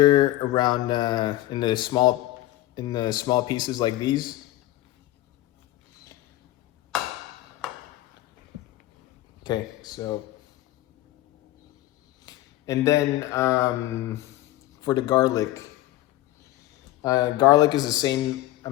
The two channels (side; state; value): right; quieter; 15.7 dB